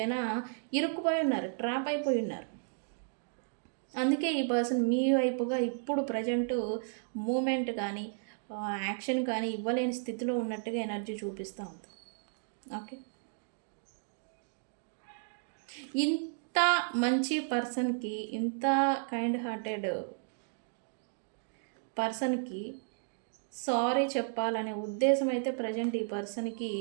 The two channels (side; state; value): left; silent; digital silence